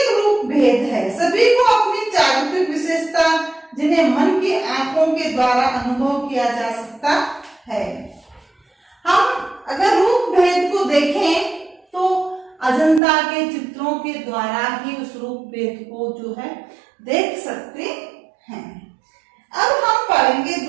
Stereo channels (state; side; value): drops out; left; at 13.0 s